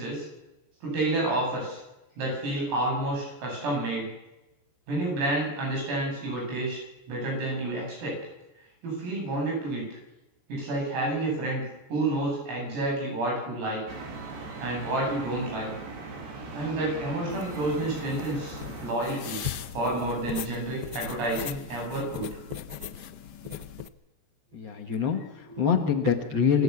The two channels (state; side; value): late; left; 14 ms